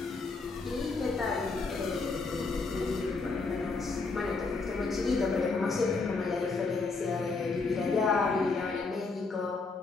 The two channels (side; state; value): right; quieter; 4.0 dB